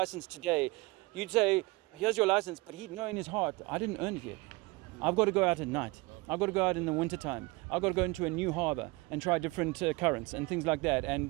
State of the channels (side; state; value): left; quieter; 23.6 dB